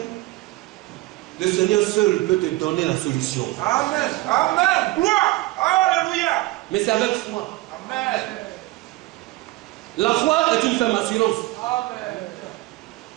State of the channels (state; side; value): quieter; left; 19.4 dB